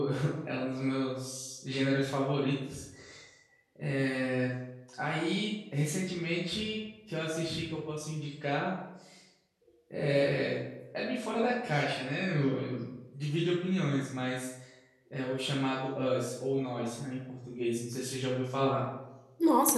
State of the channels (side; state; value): both; identical; correlation 1.00